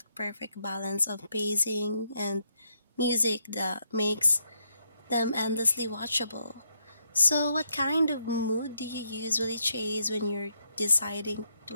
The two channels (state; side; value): inverted; both; correlation -0.77